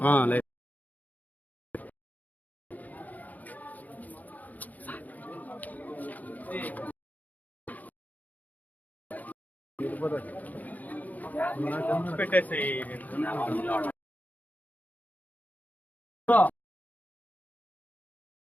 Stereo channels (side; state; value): right; late; 0.079 ms